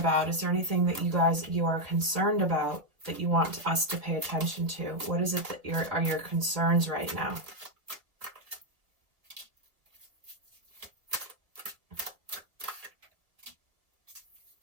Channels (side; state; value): left; late; 2.3 ms